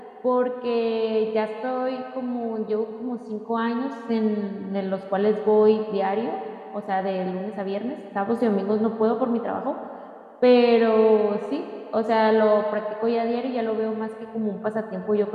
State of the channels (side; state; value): both; identical; correlation 1.00